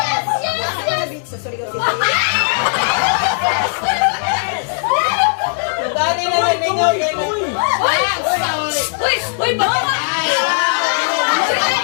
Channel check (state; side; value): silent; right; digital silence